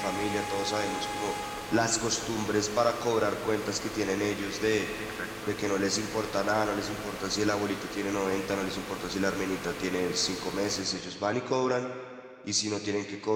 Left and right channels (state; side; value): identical; both; correlation 1.00